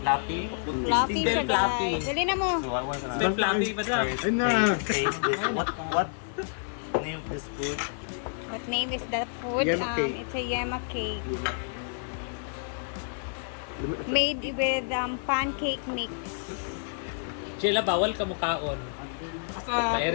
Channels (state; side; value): silent; right; digital silence